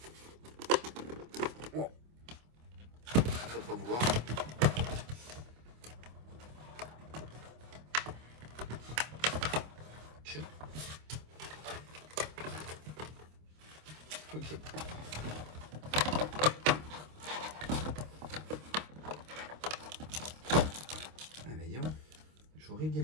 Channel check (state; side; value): late; left; 26 ms